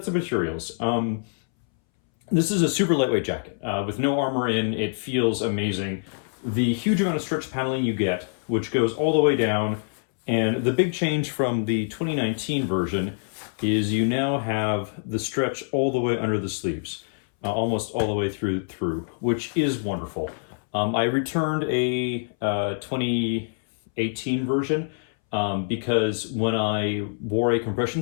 the materials. This is a super lightweight jacket with no armor in. It feels amazing. The huge amount of stretch paneling you get, which goes all the way down, and the big change from the 2019 version is you now have the stretch all the way under the sleeves, almost all the way through, which is wonderful. I returned a 2018 version because when I wore a compression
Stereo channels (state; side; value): silent; right; 62 dB below the other